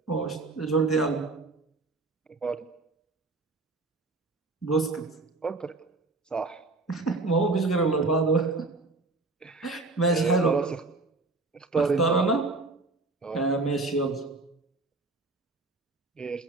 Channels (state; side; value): quieter; left; 3.4 dB